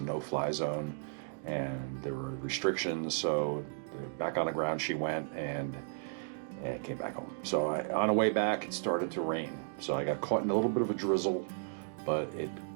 no-fly zone and there were restrictions. So back on the ground she went, and came back home. So on the way back it started to rain, so I got caught in a little bit of a drizzle, but it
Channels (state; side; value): silent; left; digital silence